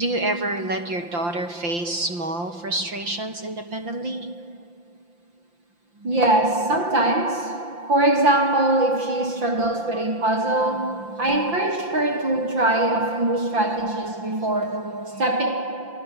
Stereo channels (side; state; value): left; late; 5.8 ms